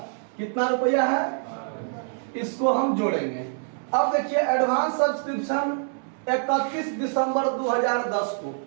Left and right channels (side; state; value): left; silent; 61 dB below the other